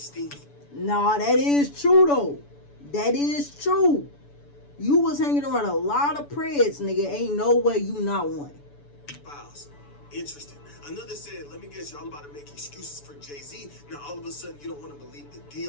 Nah, that is true though. That is true. You was hanging around a lot of preds, nigga. Ain't no way you not one. Files. Interesting. Another said, let me guess, y'all about to make excuses for Jay-Z. Now all of a sudden you don't want to believe the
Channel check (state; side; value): late; right; 7.0 ms